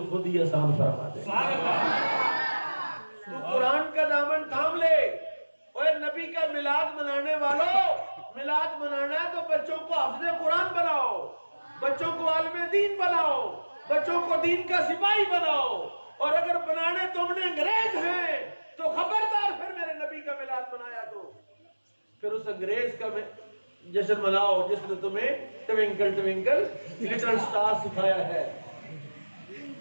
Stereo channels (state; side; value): inverted; both; correlation -1.00